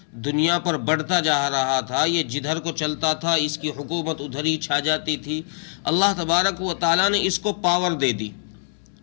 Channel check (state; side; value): silent; right; 63 dB below the other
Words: دنیا پر بڑھتا جا رہا تھا، یہ جدھر کو چلتا تھا اس کی حکومت ادھر ہی چھا جاتی تھی۔ اللہ تبارک و تعالیٰ نے اس کو پاور دے دی،